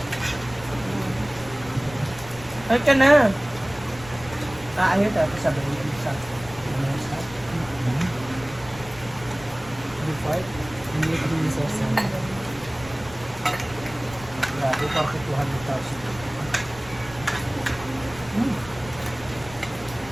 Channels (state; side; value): noise; left; rumble, 17 dB below the sound